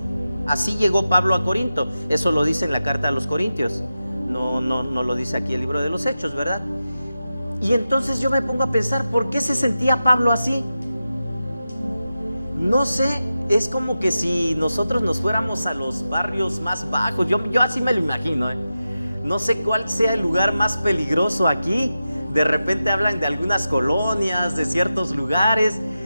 Así llegó Pablo a Corinto. Eso lo dice en la carta a los Corintios. No lo dice aquí el libro de los Hechos, ¿verdad? Y entonces yo me pongo a pensar, ¿por qué se sentía Pablo así? No sé, es como que si nosotros nos fuéramos a los barrios más bajos. Yo así me lo imagino, No sé cuál sea el lugar más peligroso aquí. De repente hablan de algunas colonias, de ciertos lugares.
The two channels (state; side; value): inverted; both; correlation -0.92